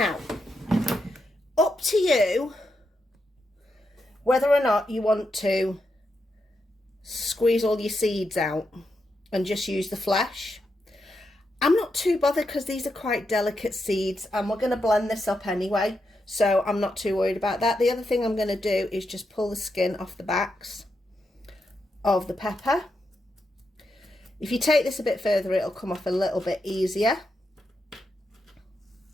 up to you whether or not you want to squeeze all your seeds out and just use the flesh. I'm not too bothered because these are quite delicate seeds, and we're going to blend this up anyway, so I'm not too worried about that. The other thing I'm going to do is just pull the skin off the backs of the pepper. If you take this a bit further, it'll come off a little bit easier.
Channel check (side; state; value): both; normal; correlation 0.84